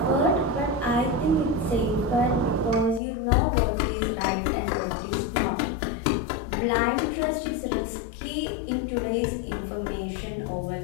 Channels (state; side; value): drops out; right; at 3.0 s